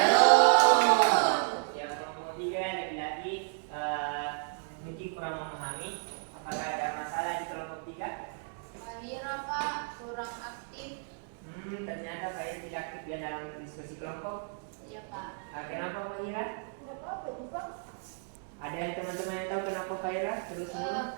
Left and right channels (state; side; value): silent; left; 56 dB below the other